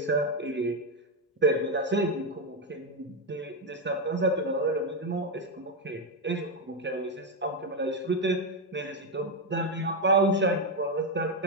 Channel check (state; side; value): normal; both; correlation 0.06